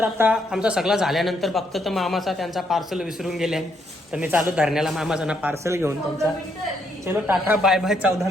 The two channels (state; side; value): normal; both; correlation 0.74